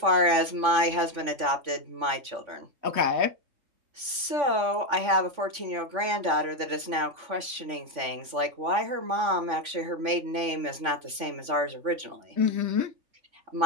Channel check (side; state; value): left; late; 3.5 ms